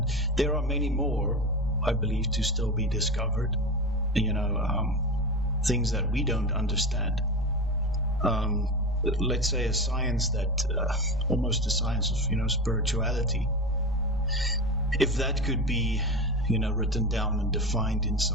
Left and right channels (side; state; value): both; normal; correlation 0.24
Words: there are many more, I believe, to still be discovered. Things that we don't understand. Let's say a science that almost a science of spirituality. If that could be written down and defined in